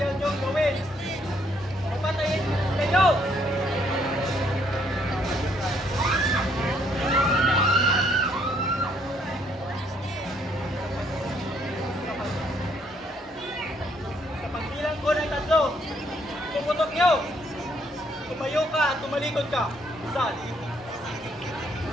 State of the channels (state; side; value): normal; both; correlation 0.68